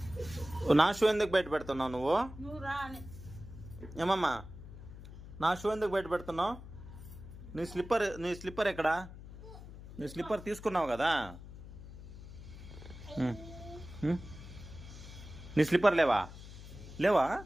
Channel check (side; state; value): left; noise; hum, 14 dB below the sound